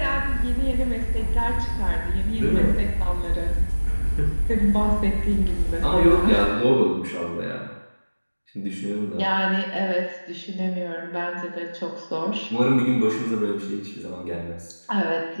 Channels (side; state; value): both; inverted; correlation -1.00